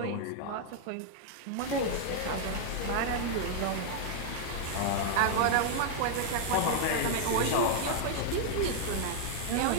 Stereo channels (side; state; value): both; different; correlation -0.01